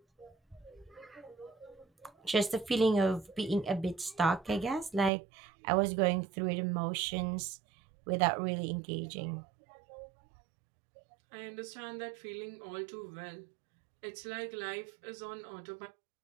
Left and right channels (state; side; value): drops out; left; at 5.1 s